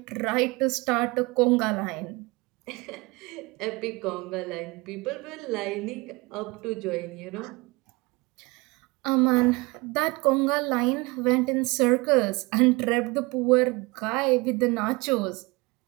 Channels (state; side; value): quieter; left; 24.9 dB